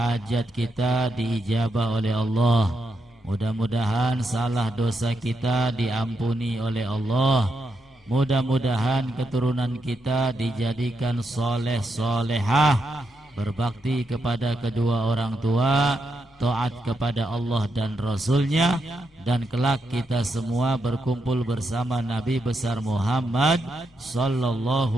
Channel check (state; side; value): normal; both; correlation 0.82